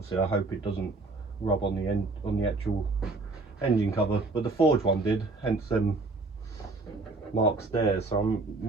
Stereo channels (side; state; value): left; quieter; 3.4 dB